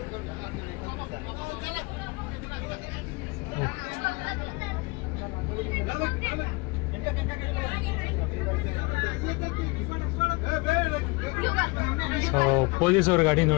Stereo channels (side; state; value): right; quieter; 26.5 dB